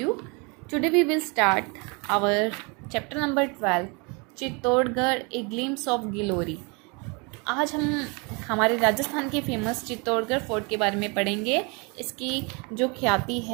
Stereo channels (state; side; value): quieter; left; 30.8 dB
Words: Today we will start our chapter number 12 Chittorgarh a glimpse of glory. आज हम हमारे राजस्थान के famous Chittorgarh fort के बारे में पढ़ेंगे। इसकी जो ख्याति